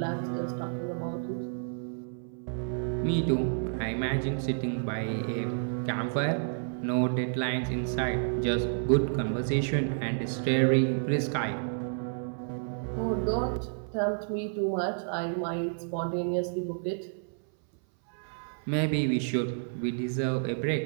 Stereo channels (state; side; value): silent; left; 58 dB below the other